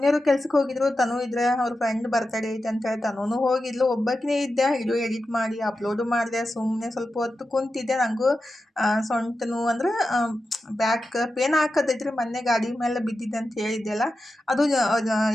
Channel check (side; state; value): both; normal; correlation 0.91